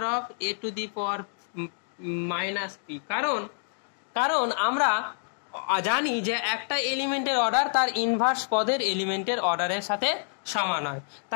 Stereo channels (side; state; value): right; silent; 60 dB below the other